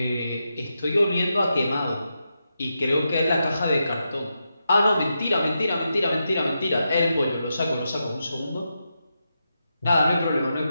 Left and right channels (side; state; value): both; inverted; correlation -0.87